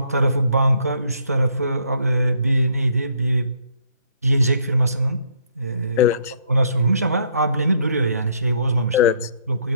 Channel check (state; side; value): inverted; both; correlation -0.66